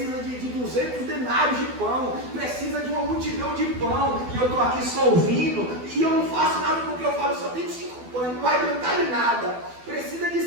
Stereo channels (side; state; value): left; late; 12 ms